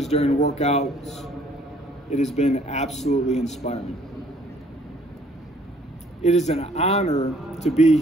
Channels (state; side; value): normal; both; correlation 0.60